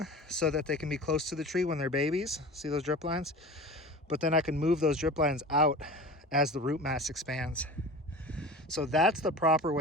so that they can be close to the tree when they're babies. See those drip lines? But then I can move those drip lines out as the root mass expands. So that's the proper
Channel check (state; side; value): normal; both; correlation 0.35